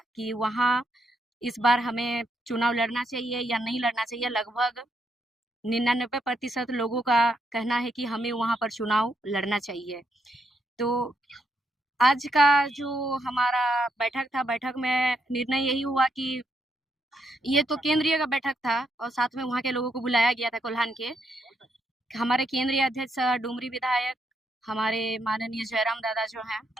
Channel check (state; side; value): normal; both; correlation 0.78